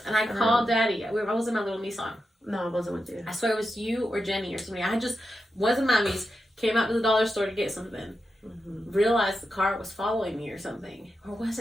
And I called Daddy. I was in my little Nissan. No, I wasn't with you. I swear it was you or Jenny or somebody. I just wasn't mommy's. Came out to the dollar store to get something. Mm-hmm. Realized the car was following me or something. Or was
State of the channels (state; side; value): normal; both; correlation 0.88